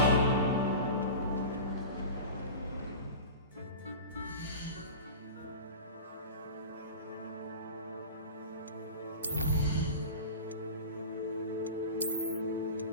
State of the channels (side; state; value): both; inverted; correlation -0.32